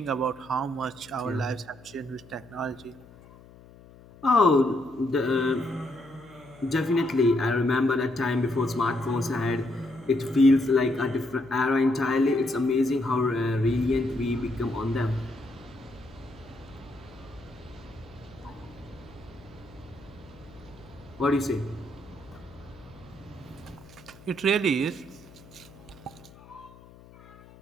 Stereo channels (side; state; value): left; noise; hum, 22 dB below the sound